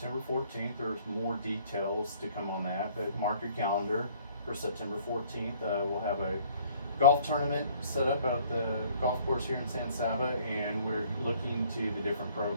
14th. There's more details to come on that, but mark your calendar for September 14th. We'll have a golf tournament set up at the golf course here in San Saba, and we're looking to the different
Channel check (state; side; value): inverted; both; correlation -0.57